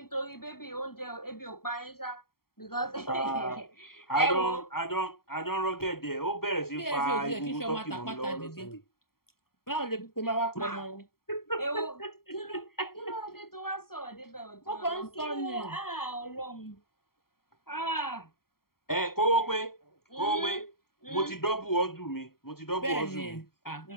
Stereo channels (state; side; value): late; right; 0.93 ms